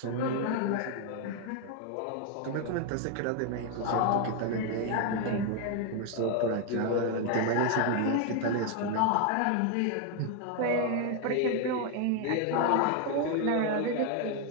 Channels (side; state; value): both; different; correlation 0.01